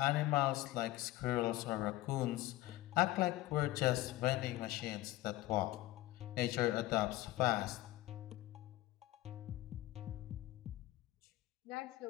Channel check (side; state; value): right; quieter; 17.1 dB